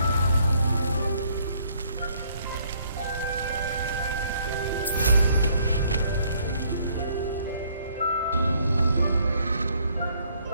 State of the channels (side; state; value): both; inverted; correlation -0.66